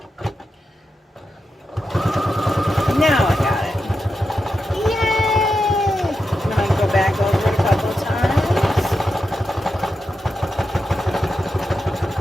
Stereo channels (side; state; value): both; normal; correlation 0.88